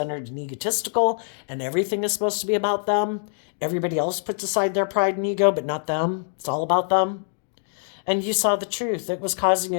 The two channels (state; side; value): silent; right; digital silence